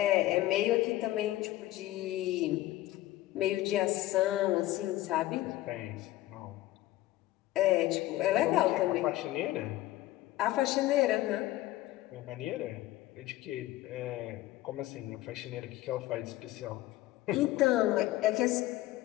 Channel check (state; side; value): quieter; right; 16.2 dB